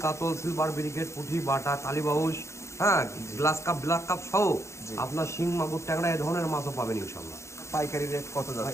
কাতল, সিলভার ব্রিগেড, পুঁটি, বাটা, কালীবাউস, হ্যাঁ, গ্লাস কাপ, ব্ল্যাক কাপ সহ আপনার শিং, মাগুর, ট্যাংরা এই ধরনের মাছও পাবেন ইনশাল্লাহ। পাইকারি রেট কত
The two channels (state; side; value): late; right; 0.14 ms